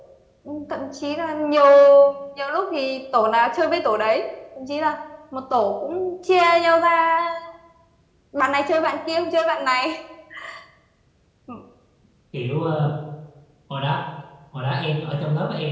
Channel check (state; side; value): identical; both; correlation 1.00